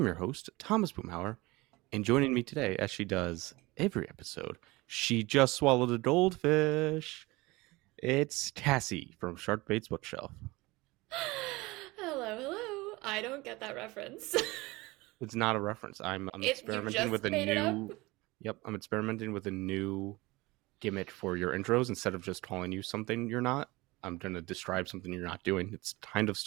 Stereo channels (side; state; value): left; quieter; 21.9 dB